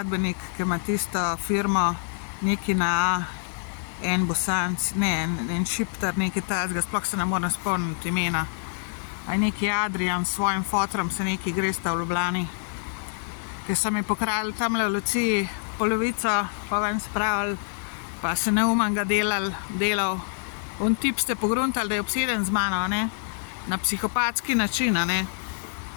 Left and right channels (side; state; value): right; silent; digital silence